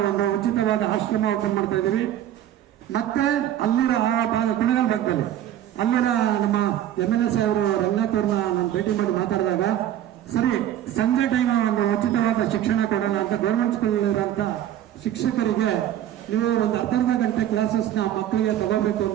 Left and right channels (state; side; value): quieter; left; 11.6 dB